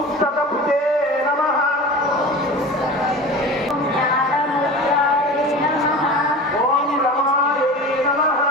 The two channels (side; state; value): both; normal; correlation 0.34